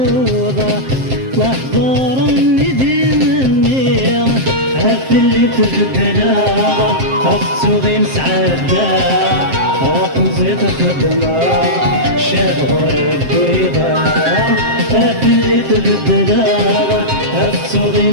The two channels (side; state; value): left; late; 7.6 ms